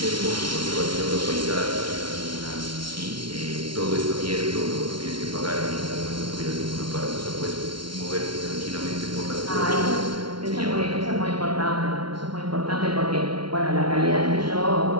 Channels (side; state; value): left; late; 0.73 ms